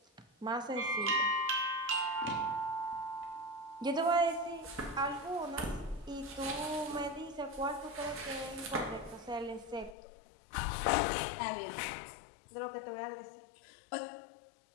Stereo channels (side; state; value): right; drops out; at 10.0 s